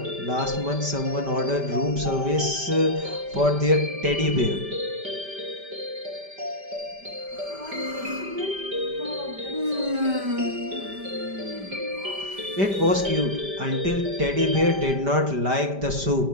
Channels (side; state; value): left; late; 5.1 ms